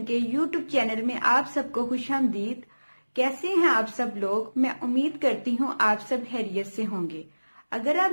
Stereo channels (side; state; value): both; inverted; correlation -1.00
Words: के YouTube channel में आप सबको खुशामदीद। कैसे हैं आप सब लोग? मैं उम्मीद करती हूँ आप सब खैरियत से होंगे। अगर आप